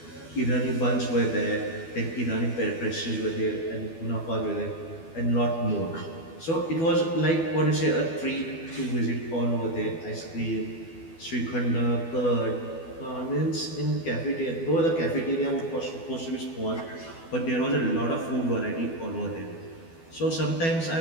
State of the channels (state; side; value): late; right; 12 ms